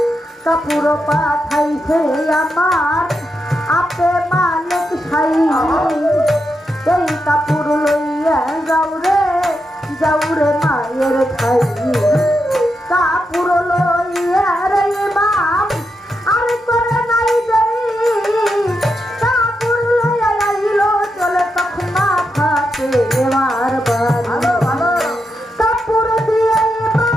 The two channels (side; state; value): both; normal; correlation 0.85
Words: কাপড় পাঠাইছে আমার আপে মালিক সাই এই কাপড় লইয়া যাও রে মায়ের খাই কাপড় লইয়া রে বাপ আর করে নাই দেরি কাপড় লইয়া আইল চলে তখন মাথাতে এবার ভালো ভালো কাপড় দিয়ে